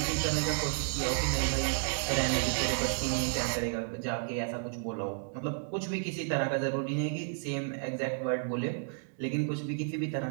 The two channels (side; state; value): left; silent; digital silence